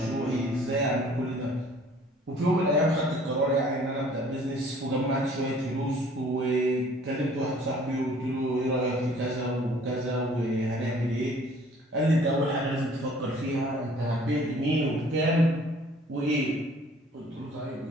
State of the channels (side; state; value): both; normal; correlation 0.54